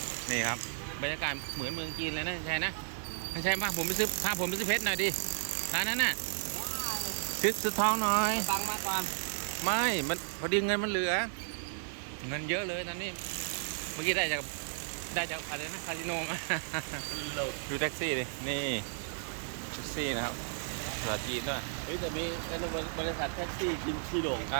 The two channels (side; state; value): left; silent; 55 dB below the other